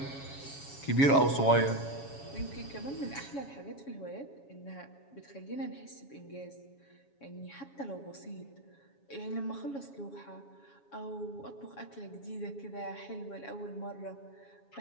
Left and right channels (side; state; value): right; late; 7.2 ms